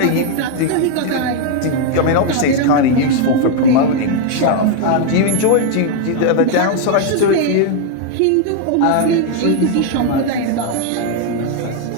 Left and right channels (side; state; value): both; different; correlation 0.00